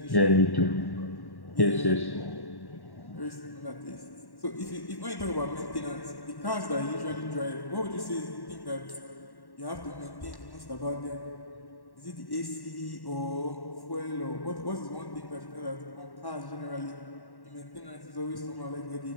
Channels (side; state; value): right; late; 1.1 ms